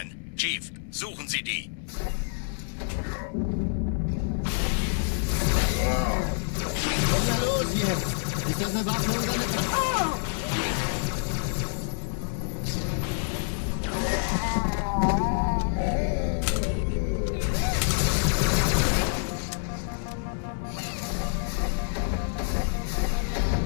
Chief, suchen Sie die. Was ist da los jetzt? Ist das eine Waffe oder eine Tra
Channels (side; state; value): right; silent; digital silence